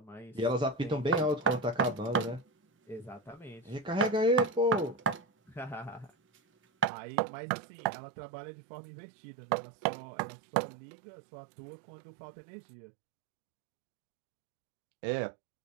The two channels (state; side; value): drops out; left; at 6.9 s